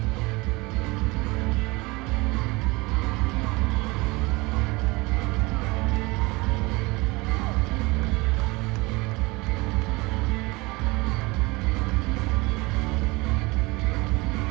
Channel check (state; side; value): quieter; left; 23.9 dB